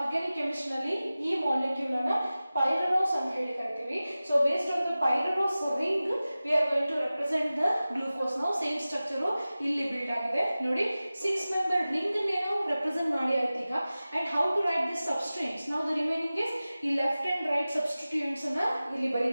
ನಲ್ಲಿ ಈ molecule ಅನ್ನು pyranose ಅಂತ ಹೇಳಿ ಕರಿತೀವಿ. So based on the pyranose ring we are going to represent the glucose. Now same structure ಇಲ್ಲಿ build ಆಗಿದೆ ನೋಡಿ. 6 member ring ಅನ್ನು represent ಮಾಡಿ ಆಯ್ತು ಈಗ. And how to write this substituents? Now the remaining is ಈ left and right substituents ಅನ್ನು ಇಲ್ಲಿ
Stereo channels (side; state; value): both; inverted; correlation -0.97